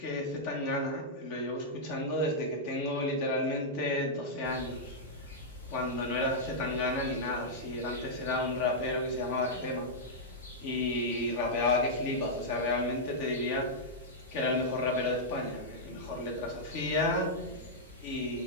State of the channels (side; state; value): both; normal; correlation -0.08